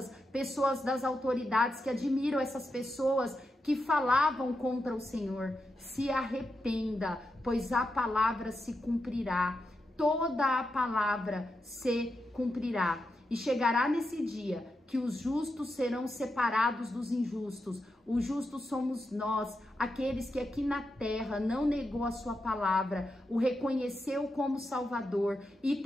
pessoas das autoridades que admiram essas pessoas que falavam contra o Senhor. Se arrependa, pois a palavra se cumprirá. Toda a palavra se cumprirá. E chegará nesse dia que os justos serão separados dos injustos. Os justos somos nós, aqueles que aqui na terra não negou a sua palavra, o reconheceu como Salvador e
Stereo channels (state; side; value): normal; both; correlation 0.87